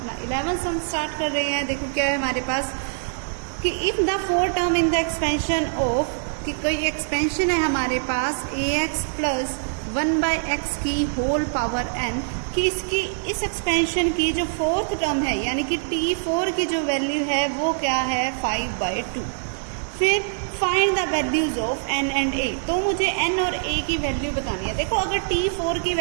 11 सम स्टार्ट कर रहे हैं। देखो क्या है हमारे पास कि if the four term in the expansion of, कि कोई एक्सपेंशन है हमारे पास ax प्लस 1/x की होल पावर n, कि इसकी इस एक्सपेंशन की जो फोर्थ टर्म है यानी कि t4 की जो वैल्यू है वो क्या है 5/2। फिर find the values of n and a, तो मुझे n और a की वैल्यू बतानी है। देखो अगर t4 की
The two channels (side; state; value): left; silent; digital silence